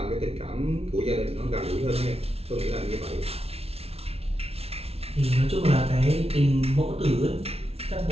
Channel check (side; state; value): left; late; 0.30 ms